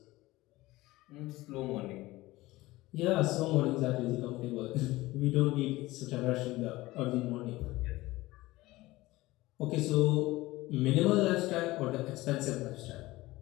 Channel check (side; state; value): right; quieter; 18.9 dB